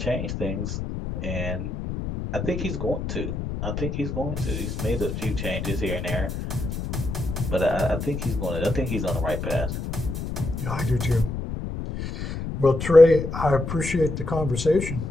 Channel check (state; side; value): noise; left; rumble, 5 dB below the sound